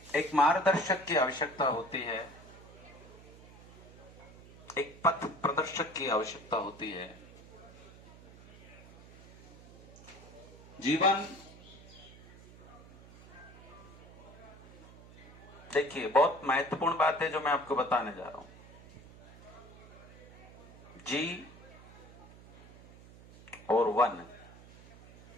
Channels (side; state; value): right; noise; hum, 20 dB below the sound